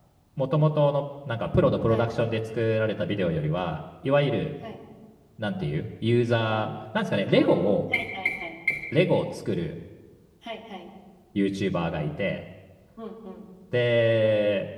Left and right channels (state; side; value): identical; both; correlation 1.00